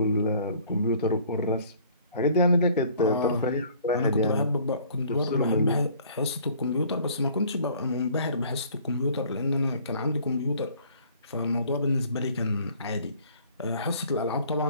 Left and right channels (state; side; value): inverted; both; correlation -0.55